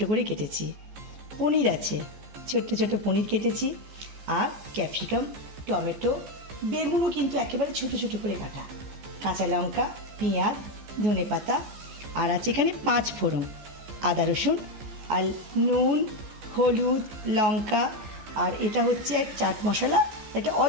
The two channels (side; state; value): left; late; 14 ms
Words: করে কেটেছি, পনির আছে, ছোট্ট ছোট পনির কেটেছি, আর ক্যাপসিকাম, টমেটো, বেগুনও কিন্তু একেবারে ছোট ছোট করে কাটা, কাঁচা লঙ্কা, পেঁয়াজ, ধনেপাতা, আর আছে এখানে 5 ফোড়ন, আদা রসুন, আর নুন, হলুদ, লঙ্কা, আর এটা হচ্ছে এক চাট মশলা, এটা